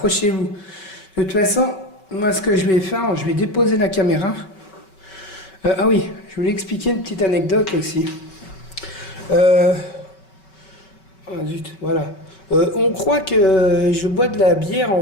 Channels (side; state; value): right; late; 5.2 ms